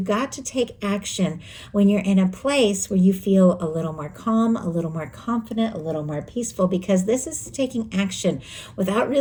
got to take action when you're in a place where you feel a little more calm, a little more confident, a little more peaceful, because this is taking action without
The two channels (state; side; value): identical; both; correlation 1.00